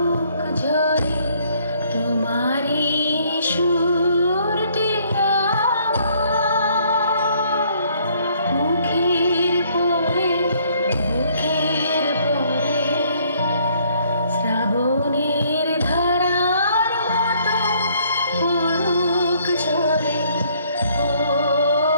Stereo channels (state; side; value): inverted; both; correlation -0.64